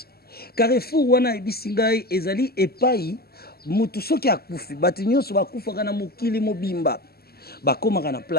Carrefour, wana Abi Singai, ezali epai, mutu soki akufi, batu nyonso bakufaka na mokili mobimba. Bakomaka na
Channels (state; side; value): late; right; 0.45 ms